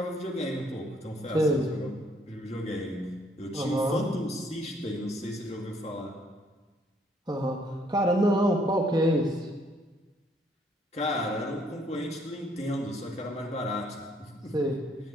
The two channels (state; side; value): normal; both; correlation 0.67